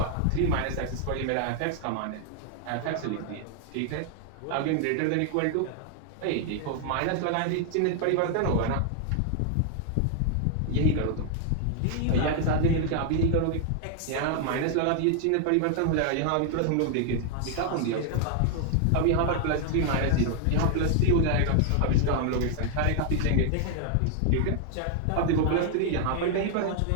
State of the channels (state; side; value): different; both; correlation 0.00